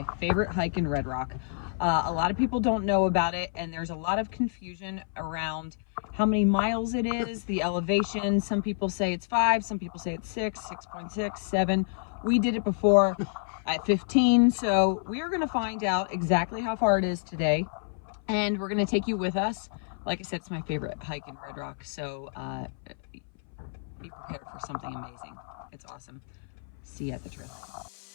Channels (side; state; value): right; silent; 59 dB below the other